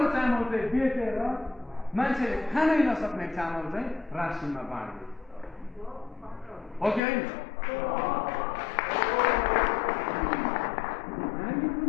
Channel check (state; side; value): drops out; right; at 7.0 s